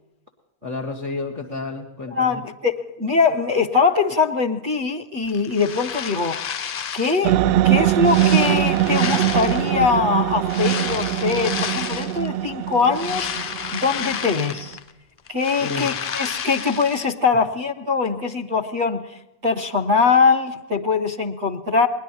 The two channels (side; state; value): left; late; 8.2 ms